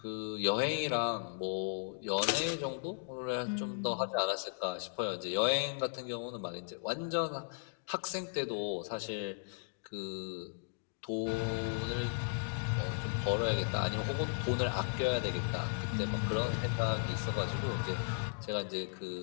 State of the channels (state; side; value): silent; right; digital silence